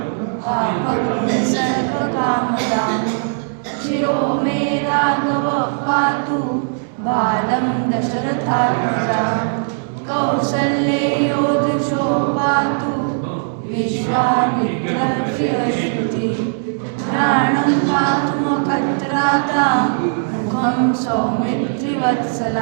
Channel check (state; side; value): silent; left; digital silence